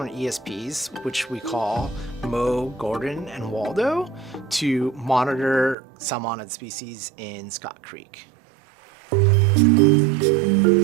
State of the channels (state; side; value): drops out; left; at 5.8 s